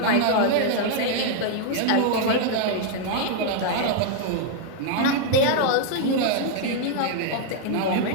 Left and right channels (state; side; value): different; both; correlation 0.00